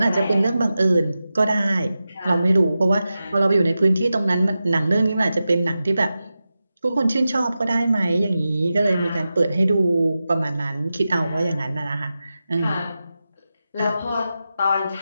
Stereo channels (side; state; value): both; inverted; correlation -0.93